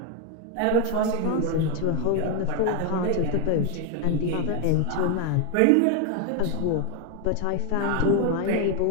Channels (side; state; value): both; different; correlation 0.01